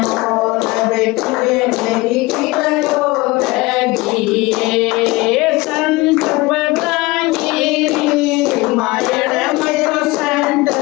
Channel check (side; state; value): right; quieter; 22.0 dB